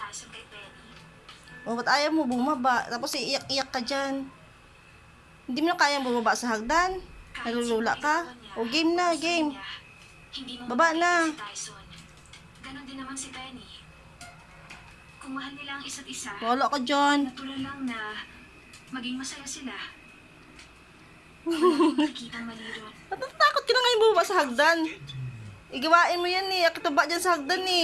kay Penny. O, ba't ayaw mo bumaba? Tapos iiyak-iyak ka dyan. Hindi mo na kayang bumaba sa hagdan? Nalulula ka? O, game na, game. Hindi mo Baba na. si Tyson. Ganon din naman si Penny. Kung mahal nila ang isa't isa, Wala ka dyan. natural lang na maging masaya sila. Wala nakikita mali ron. Natatakot ka na ngayon bumaba sa hagdan. Igawain mo yan eh. Akitaba dyan sa hagdan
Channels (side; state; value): both; identical; correlation 1.00